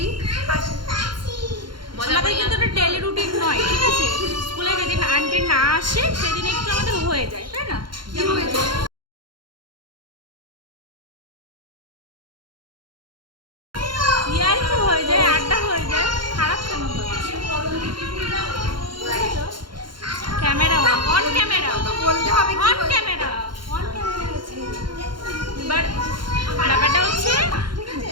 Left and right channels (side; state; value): left; late; 0.72 ms